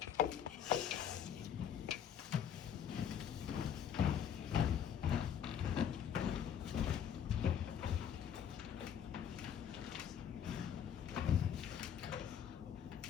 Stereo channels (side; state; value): right; quieter; 8.7 dB